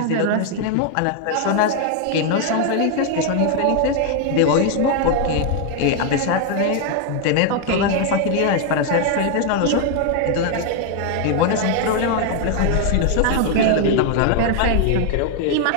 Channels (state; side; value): different; both; correlation 0.00